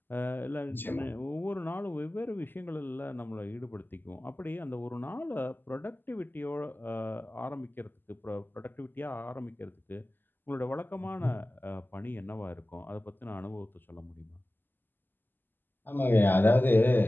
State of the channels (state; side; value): late; right; 0.093 ms